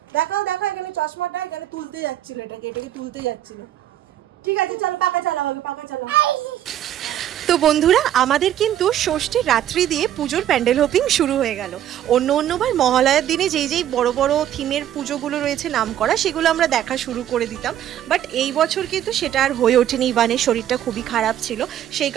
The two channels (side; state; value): left; quieter; 11.4 dB